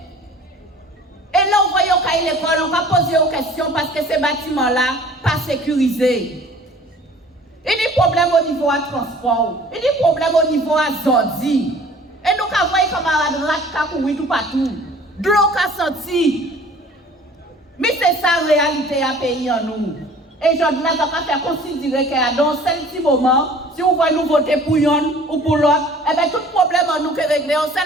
Et là, vous voyez qu'à l'école, on va poser aux questions parce que ces bâtiments-là, pas sécurisés. Il y a des problèmes au niveau du transport. Il y a des problèmes au niveau de Zordi. Et nous avons vu comme un rat qui tout partout. De l'eau qui a senti. Mais c'est ça la réalité à pays en nous. Et je dois faire considérer que dans ce petit moment, si on voit nous voter pour une ou pour l'autre, eh bien tout problème en nous est réglé en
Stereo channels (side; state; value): both; normal; correlation 0.49